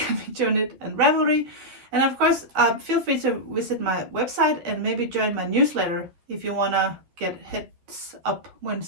and Ravelry. And of course, feel free to visit my website and maybe join my newsletter if you want to get heads up when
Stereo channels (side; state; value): left; late; 12 ms